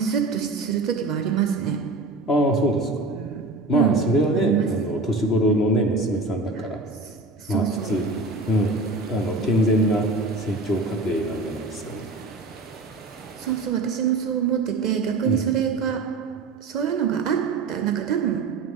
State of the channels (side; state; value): left; quieter; 3.1 dB